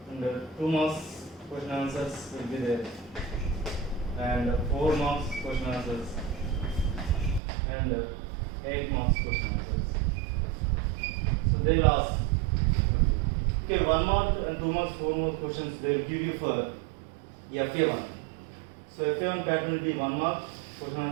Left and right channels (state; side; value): drops out; left; at 7.4 s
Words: and 2 marks question answers will be there, and 4 marks question answers, and 8 marks question answers. So they will ask. Okay, 1 mark and 2 marks, 4 marks questions they will give you for FA1. So FA1 pattern will be 1 mark question